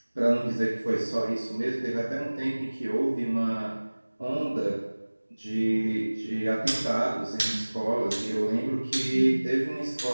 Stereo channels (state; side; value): inverted; both; correlation -1.00